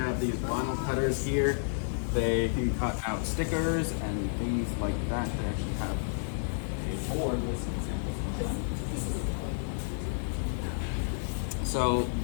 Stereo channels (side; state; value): right; silent; digital silence